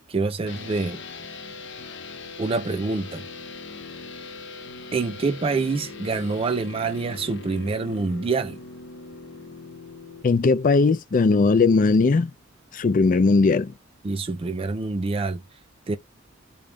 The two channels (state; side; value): normal; both; correlation 0.55